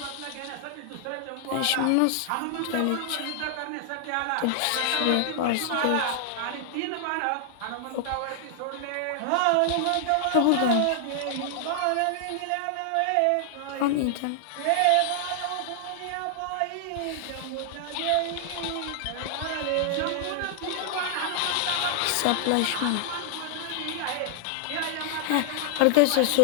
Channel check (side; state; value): both; different; correlation 0.00